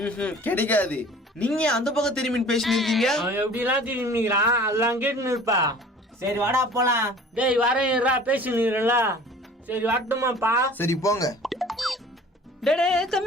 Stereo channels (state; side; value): normal; both; correlation 0.46